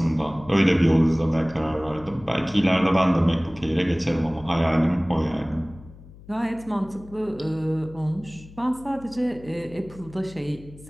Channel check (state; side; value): noise; left; hum, 20 dB below the sound